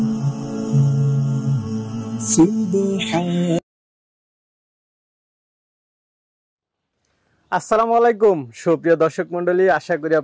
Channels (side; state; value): both; identical; correlation 1.00